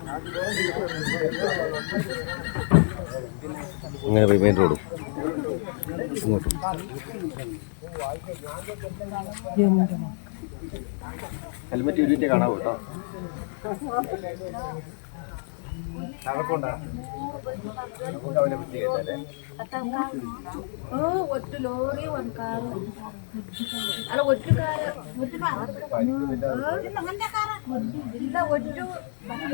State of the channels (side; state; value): right; silent; 60 dB below the other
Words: ഇങ്ങനെ പോയി മെയിൻ റോഡ് ഇങ്ങോട്ടും. ഹെൽമെറ്റ് യൂണിറ്റ് കാണാവൂ കേട്ടോ. ഒറ്റ ലോറി ಒಂದು ಕಾರು ಅಲ್ಲ ಒಟ್ಟು ಕಾರು ಇಲ್ಲ ಒಟ್ಟು